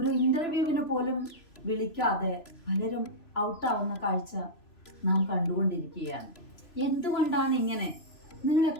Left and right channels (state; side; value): late; right; 3.0 ms